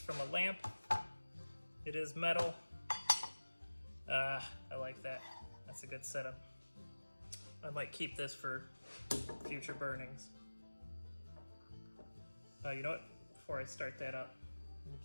from a lamp. It is metal. I like that. That's a good setup. I might keep this for future burnings. You know what? Before I start that up, let me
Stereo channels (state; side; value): inverted; both; correlation -1.00